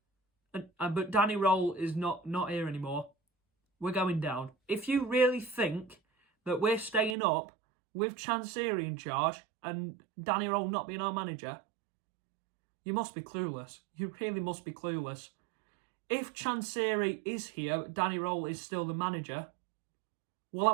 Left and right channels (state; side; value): drops out; left; at 7.2 s